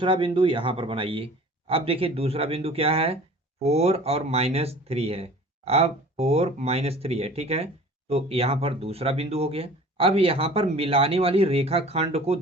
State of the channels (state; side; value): normal; both; correlation 0.45